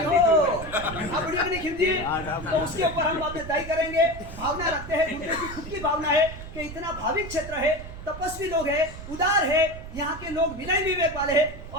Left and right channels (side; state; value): right; noise; rumble, 12 dB below the sound